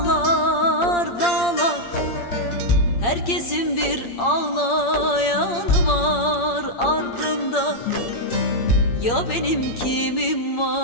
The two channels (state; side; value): late; right; 8.6 ms